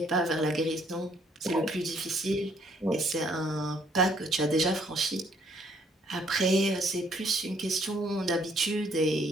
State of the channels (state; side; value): normal; both; correlation 0.65